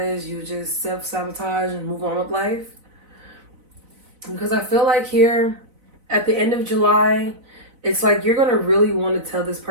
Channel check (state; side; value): late; left; 4.0 ms